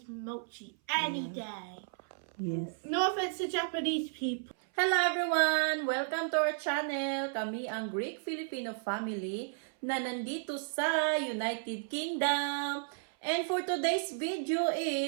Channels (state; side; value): silent; left; 56 dB below the other